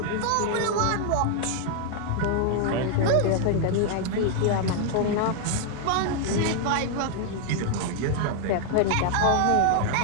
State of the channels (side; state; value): both; different; correlation 0.00